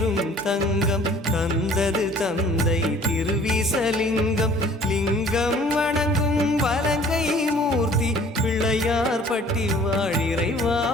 தங்கம் தந்தது தந்தை திருவிசலிங்கம் லிங்கம் வணங்கும் வலங்கை மூர்த்தி பிள்ளையார் பட்டி வாழ் இறைவா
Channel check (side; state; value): both; normal; correlation 0.53